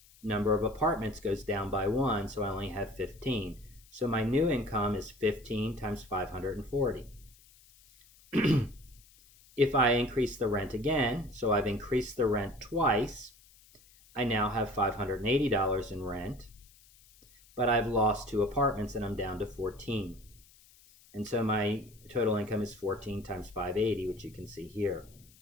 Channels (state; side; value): noise; left; hiss, 26 dB below the sound